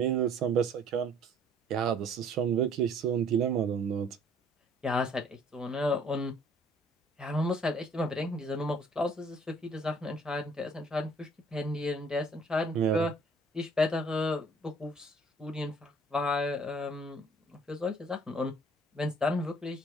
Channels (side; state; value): both; normal; correlation 0.57